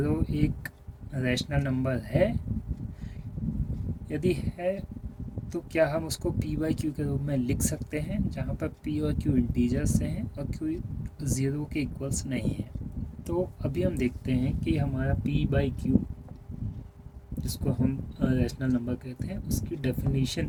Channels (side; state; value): both; identical; correlation 1.00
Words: एक रैशनल नंबर है? यदि है तो क्या हम उसको P by Q के रूप में लिख सकते हैं, जहाँ पर P और Q इंटीजर्स हैं और Q 0 के इक्वल्स नहीं है? तो अभी हम देखते हैं कि हमारा P by Q, जिसको हम रैशनल नंबर कहते हैं, उसकी